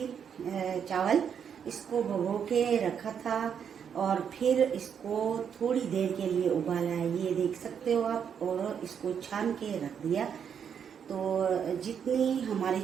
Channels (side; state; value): left; quieter; 7.7 dB